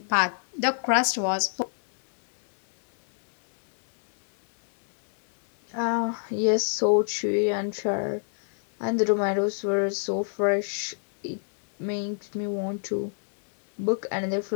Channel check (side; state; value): right; silent; digital silence